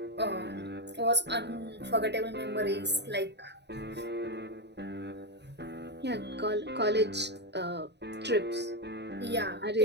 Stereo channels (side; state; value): left; late; 0.50 ms